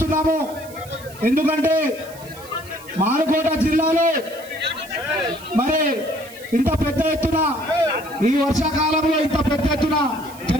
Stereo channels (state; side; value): noise; right; hiss, 20 dB below the sound